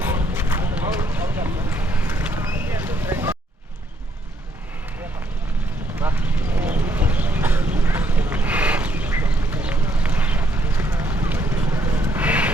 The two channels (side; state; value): both; normal; correlation 0.71